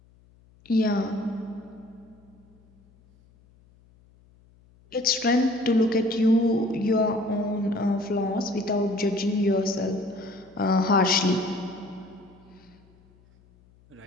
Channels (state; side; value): noise; left; hum, 30 dB below the sound